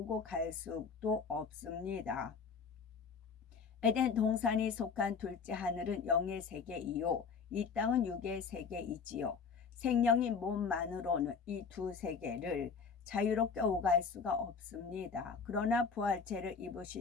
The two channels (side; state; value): right; quieter; 5.7 dB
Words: 갈 수도 없습니다. 에덴 동산이 속한 둘째 하늘은 영의 세계이요 이 땅은 육의 세계이지요. 생명인 몸만으로는 이 두 세계를 자유롭게 오갈 수가 없습니다. 그러나 부활체를